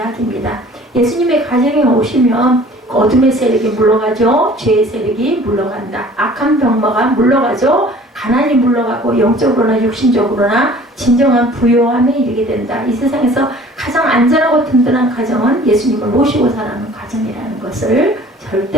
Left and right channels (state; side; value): normal; both; correlation 0.49